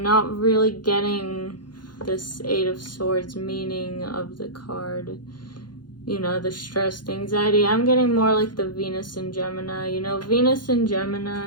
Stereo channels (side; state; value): right; late; 0.71 ms